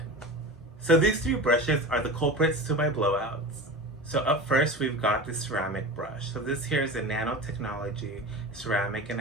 So these three brushes are the culprits to my blowouts. So up first, we've got the ceramic brush. So this here is a nanotechnology ceramic and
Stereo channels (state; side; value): normal; both; correlation 0.31